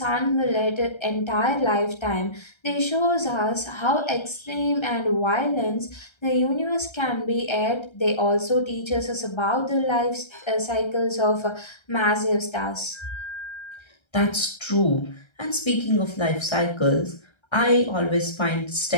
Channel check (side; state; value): right; late; 1.3 ms